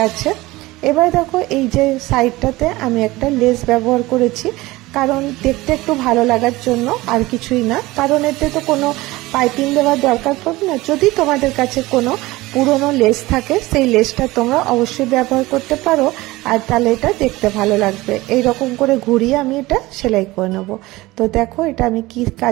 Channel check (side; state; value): left; quieter; 19.7 dB